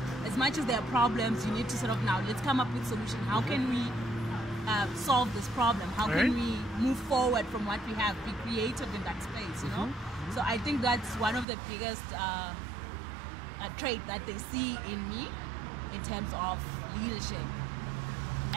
As much as there are problems, you need to sort of now, let's come up with solution. How can we solve this problem? How can we move forward from what we have? Be creative in that space, you know? So I think that's one of the biggest trait that they see in me in terms of leadership.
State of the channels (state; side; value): drops out; left; at 11.5 s